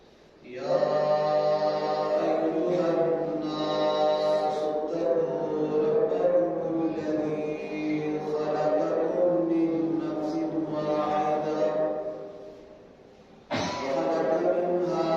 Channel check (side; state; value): both; identical; correlation 1.00